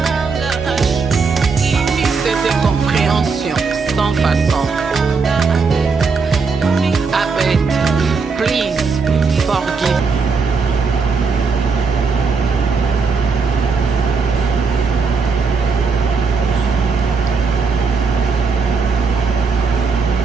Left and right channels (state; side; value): quieter; left; 4.9 dB